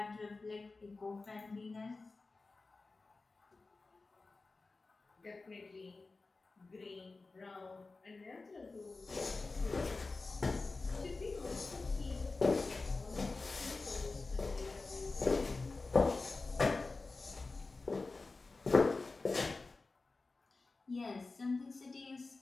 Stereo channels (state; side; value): quieter; right; 3.7 dB